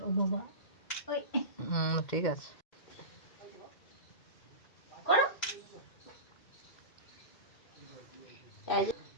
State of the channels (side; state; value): right; late; 2.1 ms